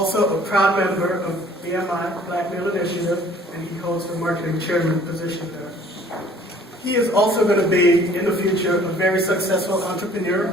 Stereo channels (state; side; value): normal; both; correlation 0.54